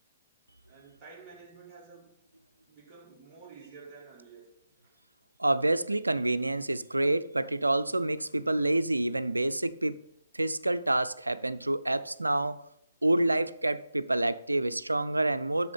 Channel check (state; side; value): inverted; both; correlation -0.96